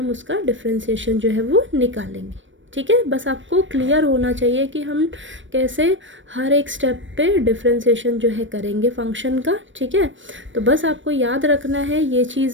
उसका डिफ्रेंशिएशन जो है वो निकालेंगे। ठीक है, बस आपको क्लियर होना चाहिए कि हम कैसे हर एक स्टेप पे डिफ्रेंशिएशन जो है करेंगे फंक्शन का। ठीक है, तो बस आपको याद रखना है ये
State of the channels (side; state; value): left; late; 0.56 ms